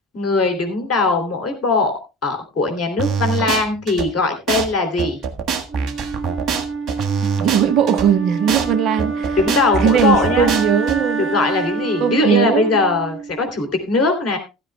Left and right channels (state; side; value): normal; both; correlation 0.37